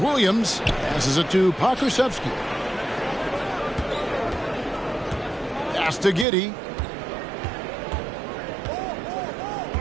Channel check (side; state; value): left; drops out; at 6.2 s